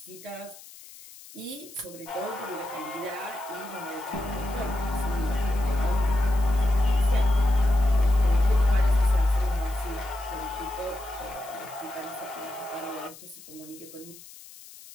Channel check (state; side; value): noise; left; hiss, 19 dB below the sound